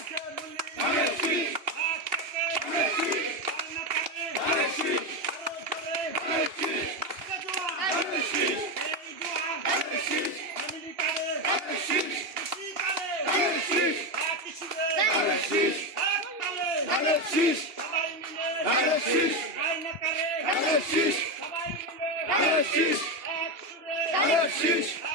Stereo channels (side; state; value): left; late; 2.8 ms